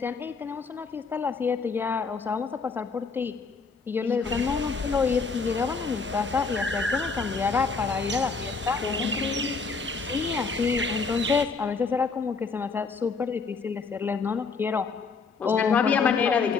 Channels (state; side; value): quieter; right; 4.8 dB